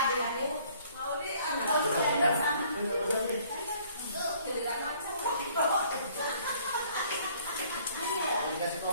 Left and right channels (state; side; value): inverted; both; correlation -0.59